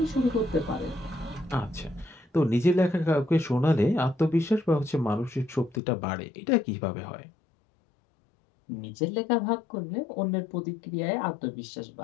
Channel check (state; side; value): drops out; right; at 5.8 s